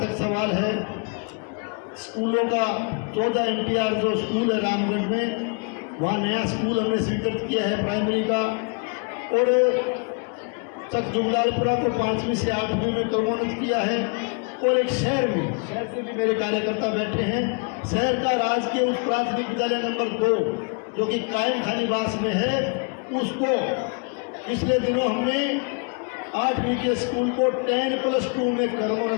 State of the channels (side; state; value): right; quieter; 36.4 dB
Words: सवाल है, स्कूलों का 14 NTR जो स्कूल है रामगढ़ में, वहाँ नया स्कूल हमने स्वीकृत किया है प्राइमरी का। और तक जुगलालपुरा को 5वीं से 8वीं में क्रमोन्नत किया है। और एक शहर से भी मेरे कार्यकर्ता बैठे हैं, शहर का राजकीय उच्च प्राथमिक विद्यालय नंबर 2 जो कि कायम खानीवास में है, उसको पिछले दिनों हमने 8वीं के स्कूल को 10+2 में